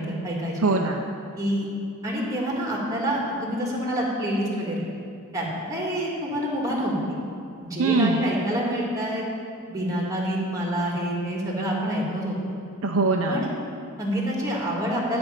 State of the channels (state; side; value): normal; both; correlation 0.42